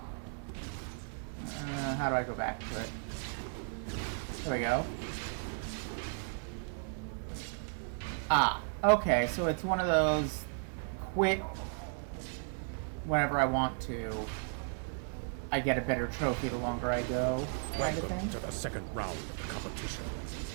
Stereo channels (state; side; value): silent; left; 54 dB below the other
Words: How do I go back to it? There we go. Ah, okay, so it's one of those quit whenever I want to. I get a better trophy the longer I go, kind of Welcome thing. to the second round of the competition.